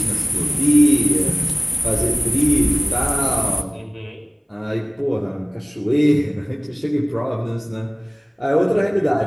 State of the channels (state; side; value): identical; both; correlation 1.00